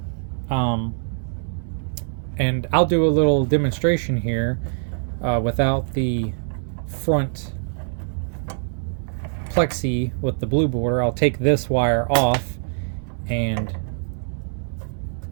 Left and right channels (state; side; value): silent; left; digital silence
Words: and I'll do a little demonstration here without the front plexi with the blue border. I'll take this wire off and